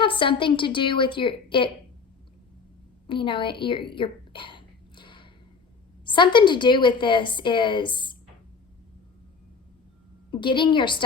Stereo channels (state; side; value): quieter; right; 5.1 dB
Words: something to do with your something to do with this is getting your